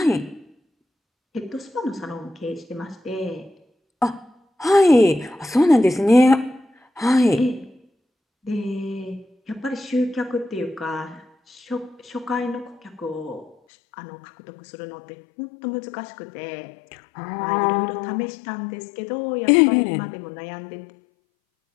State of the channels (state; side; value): drops out; right; at 13.6 s